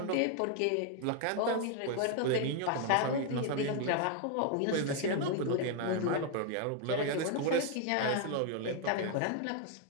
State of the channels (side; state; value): both; different; correlation 0.00